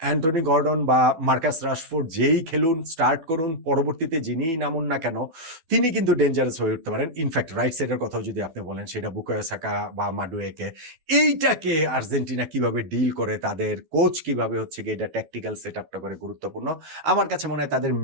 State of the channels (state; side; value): late; left; 12 ms